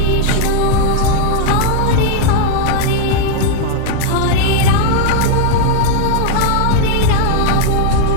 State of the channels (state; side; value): different; both; correlation 0.00